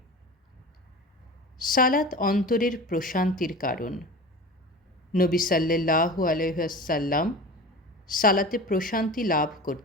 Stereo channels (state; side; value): normal; both; correlation 0.33